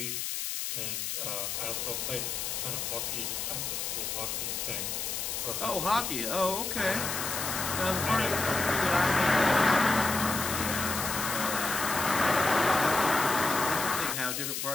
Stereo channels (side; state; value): left; noise; hiss, 3 dB below the sound